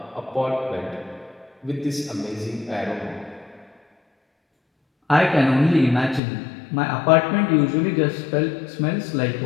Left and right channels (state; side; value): drops out; right; at 6.2 s